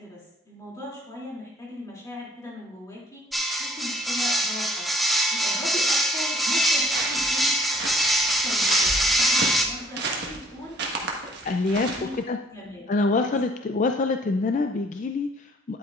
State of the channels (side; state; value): both; normal; correlation 0.58